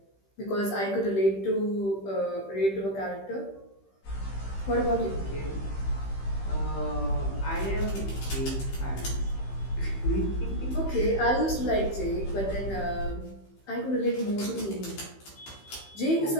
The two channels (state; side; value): late; right; 15 ms